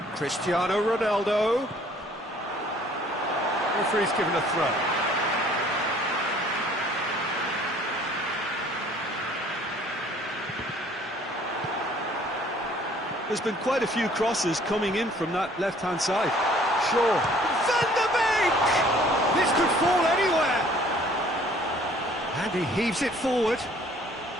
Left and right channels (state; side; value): normal; both; correlation 0.56